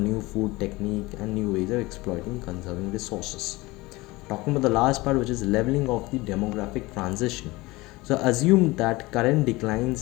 food technique and new ways of exploiting conserving resources. Talking about the last part, which is leveling of the demographic transition. So assume that current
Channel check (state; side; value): quieter; right; 21.3 dB